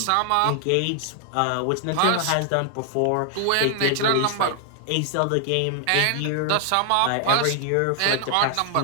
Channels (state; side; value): different; both; correlation 0.00